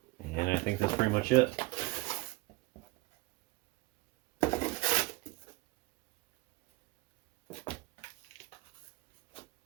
And I think that's pretty much it.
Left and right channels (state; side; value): quieter; left; 22.5 dB